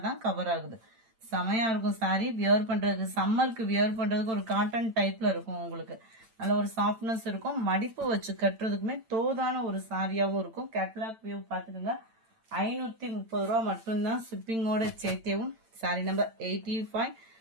தான் கவர் ஆகுது. செமையா இருக்கும் சாரி. வியர் பண்றதுக்கு, சம்மருக்கு வியர் பண்றதுக்கு ஒரு காட்டன் டைப்ல இருக்கும். உங்களுக்கு நல்ல ஒரு சாஃப்ட்னஸ் இருக்கும். மடிப்பு வச்சு கட்டுறதுக்குமே தோதான ஒரு சாரியாகவும் இருக்கும். கேட்லாக் வியூ பார்த்துக்கோங்க. 530 ரூபா மட்டும்தான் ஷிப்பிங்கோட சேர்த்தேவும். சாரி நம்பர் 85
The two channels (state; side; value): late; left; 8.9 ms